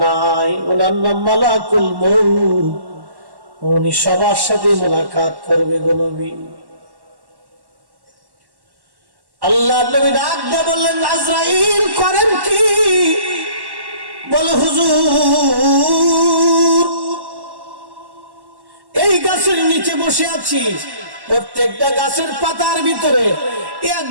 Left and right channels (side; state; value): left; late; 1.1 ms